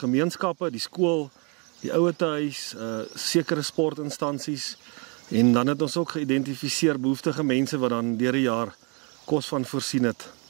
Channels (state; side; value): quieter; left; 34.0 dB